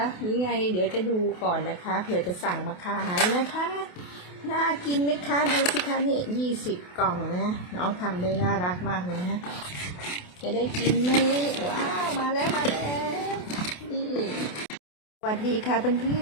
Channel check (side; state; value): right; late; 28 ms